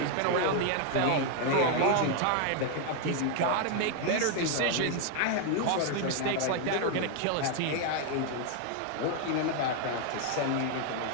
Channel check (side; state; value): both; different; correlation 0.00